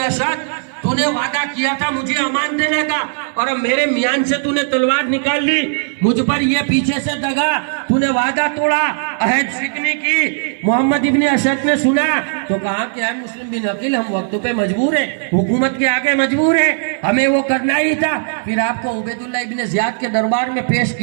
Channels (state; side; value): silent; left; digital silence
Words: تو نے وعدہ کیا تھا مجھے امان دینے کا، اور اب میرے میان سے تو نے تلوار نکال لی، مجھ پر یہ پیچھے سے دگا، تو نے وعدہ توڑا، عہد شکنی کی۔ محمد ابن اشد نے سنا تو کہا کہ اے مسلم بن عقیل، ہم وقت پہ مجبور ہیں، حکومت کے آگے مجبور ہیں، ہمیں وہ کرنا ہی تھا۔ پھر آپ کو عبید اللہ ابن زیاد کے دربار میں پیش